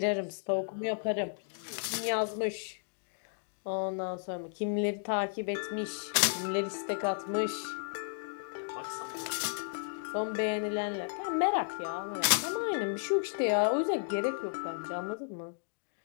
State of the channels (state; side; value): silent; right; digital silence